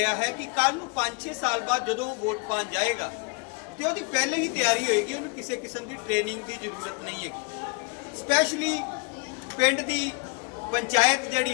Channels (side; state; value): right; quieter; 33.8 dB